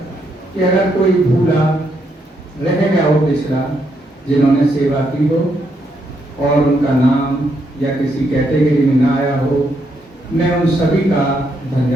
कि अगर कोई भूला रह गया हो पिछला, जिन्होंने सेवा की हो और उनका नाम या किसी कैटेगरी में ना आया हो, मैं उन सभी का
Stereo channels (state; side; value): normal; both; correlation 0.77